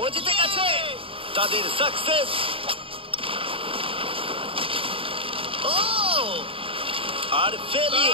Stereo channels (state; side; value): late; left; 0.26 ms